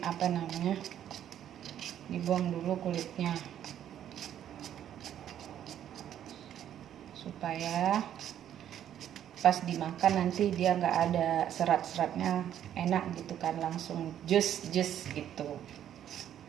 apa namanya, dibuang dulu kulitnya supaya pas dimakan nanti dia nggak ada serat-seratnya, enak gitu kan, langsung jus gitu,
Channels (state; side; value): quieter; left; 10.5 dB